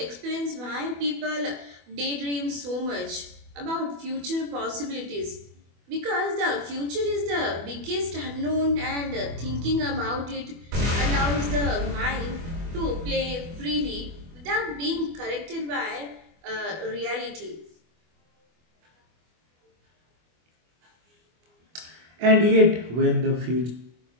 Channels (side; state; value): left; late; 24 ms